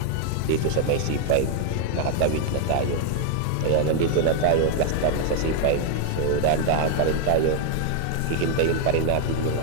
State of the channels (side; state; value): both; different; correlation 0.00